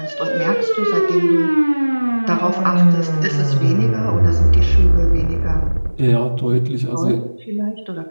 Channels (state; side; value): inverted; both; correlation -1.00